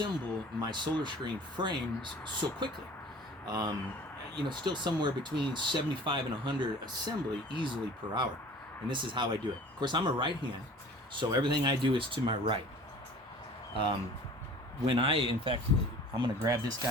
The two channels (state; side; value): normal; both; correlation 0.45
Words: my solar screen frames so quickly. Still somewhere between 75 and 100 assembly easily per hour. And this is how I do it. Of course, I'm a right hand, so everything I do is to my right. I'm gonna grab this